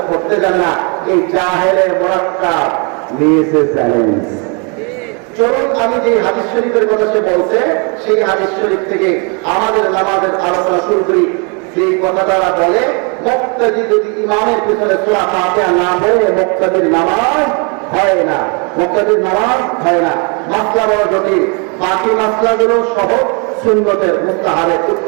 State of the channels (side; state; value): left; quieter; 34.6 dB